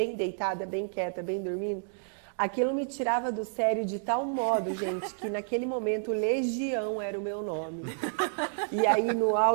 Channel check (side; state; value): left; silent; digital silence